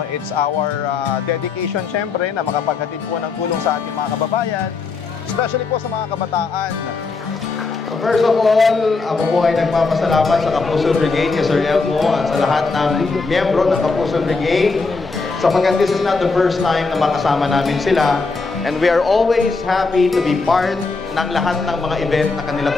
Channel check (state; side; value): quieter; right; 4.2 dB